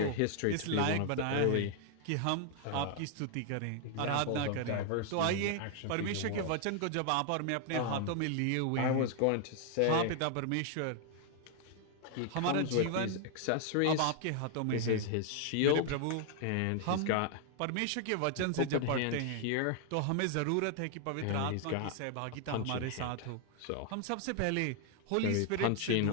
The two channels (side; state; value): both; different; correlation 0.00